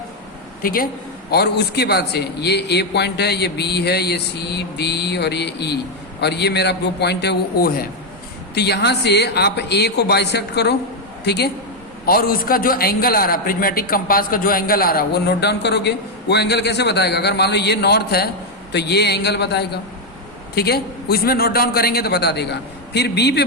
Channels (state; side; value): normal; both; correlation 0.03